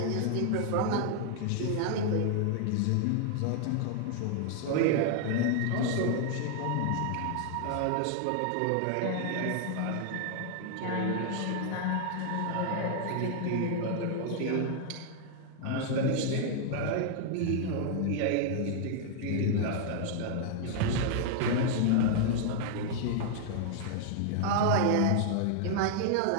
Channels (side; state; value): both; different; correlation 0.00